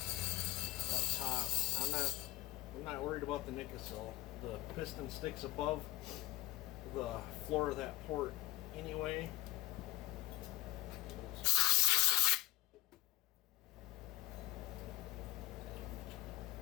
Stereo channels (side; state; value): right; quieter; 17.6 dB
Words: up top. I'm not worried about the Nickel. The piston sticks above the floor of that port anyway.